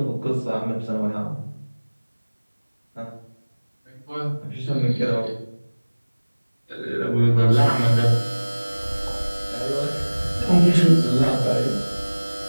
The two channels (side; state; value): both; inverted; correlation -1.00